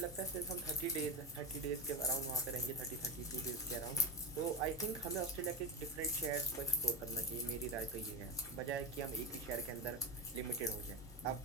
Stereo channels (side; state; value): both; normal; correlation 0.15